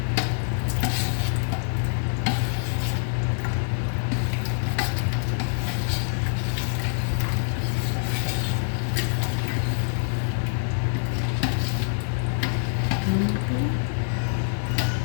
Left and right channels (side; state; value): right; silent; digital silence